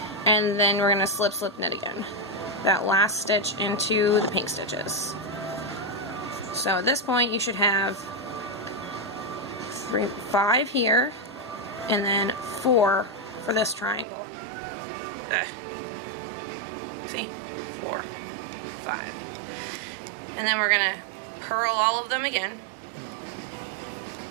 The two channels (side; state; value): left; drops out; at 14.1 s